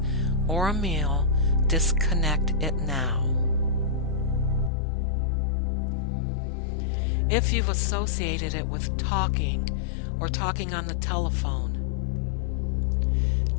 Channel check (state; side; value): drops out; right; at 4.7 s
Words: or a meal, disconnect it now. If you've associated it with talking or talking on the telephone,